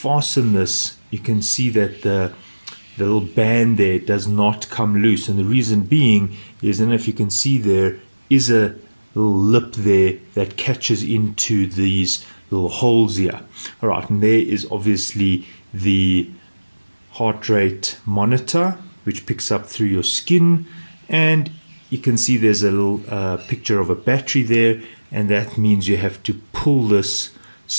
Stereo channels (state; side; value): inverted; both; correlation -1.00